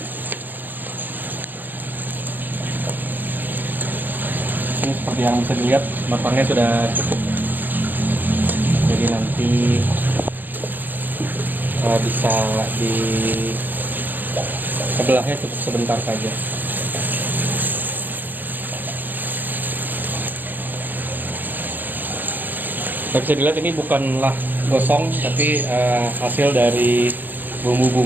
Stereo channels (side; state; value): left; late; 0.087 ms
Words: Ini seperti yang bisa dilihat, matangnya sudah cukup, jadi nanti bisa di sebelahnya cukup sebentar saja. Bisa dilihat ini bukanlah gosong, tapi hasil dari